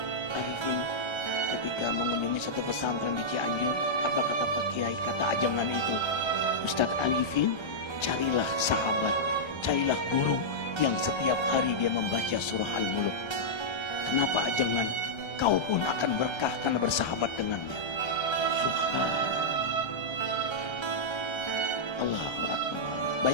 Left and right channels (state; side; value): late; right; 1.3 ms